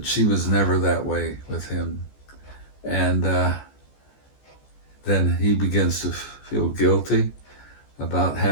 she was never that way with him. And then he begins to feel guilty about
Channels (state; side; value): late; right; 14 ms